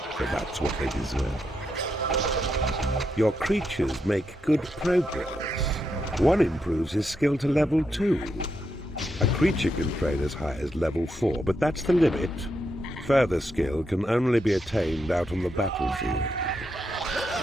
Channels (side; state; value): both; normal; correlation 0.82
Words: for that's what they deserve. Your creatures make good progress. One improves his skill to level 2. A creature can train as high as level 4, but that's the limit. Further skill can only be attained out on the battlefield.